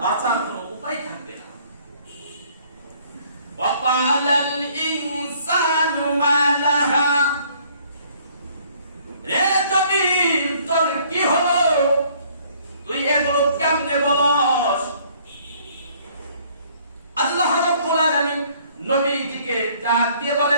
বাঁচার কোনো উপায় থাকবে না। ওয়াকালাল ইনসানু মা লাহা, রে জমিন তোর কি হলো, তুই এগুলো কেমনে বলস? আল্লাহ রাব্বুল আলামিন নবীজিকে ডাক দিয়ে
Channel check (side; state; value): both; inverted; correlation -0.60